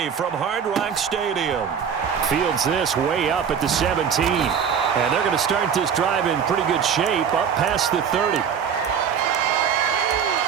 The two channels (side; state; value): left; quieter; 7.4 dB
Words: from Hard Rock Stadium. Fields this way up at the 17. And they're going to start this drive in pretty good shape up past the 30.